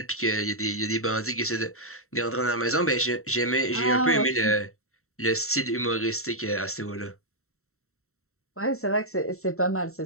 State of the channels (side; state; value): right; late; 0.63 ms